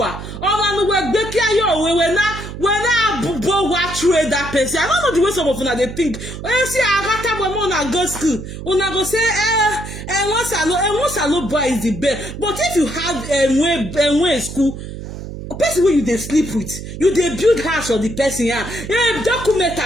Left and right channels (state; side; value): noise; right; hum, 10 dB below the sound